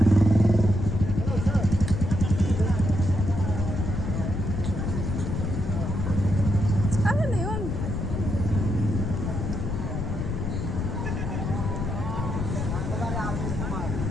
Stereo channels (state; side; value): noise; left; rumble, 2 dB below the sound